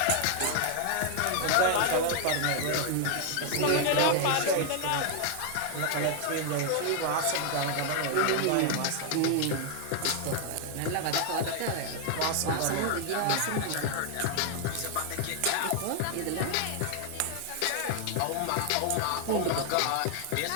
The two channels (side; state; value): both; different; correlation 0.00